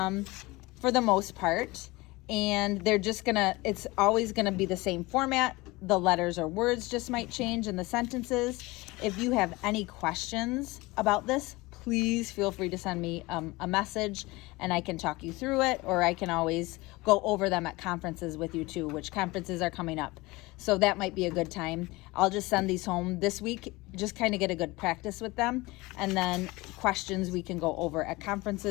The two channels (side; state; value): right; quieter; 22.0 dB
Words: the most part. And they're just it's always gonna be the same format. The letters or words just might change in the sentences. If you have any questions about this, please feel free to send me a message and I can talk you through it, or I can always go over them at conferences with you too, which conferences are coming up. So that might be a good time. I'll just send these home this week, just kind of get a good practice with them. And then questions we can go over at